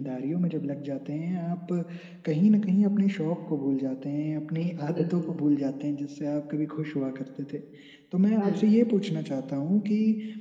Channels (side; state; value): both; identical; correlation 1.00